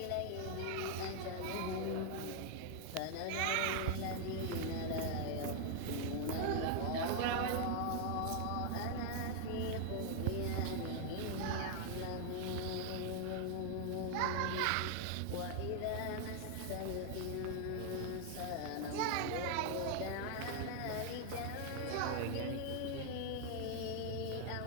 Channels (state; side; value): different; both; correlation 0.00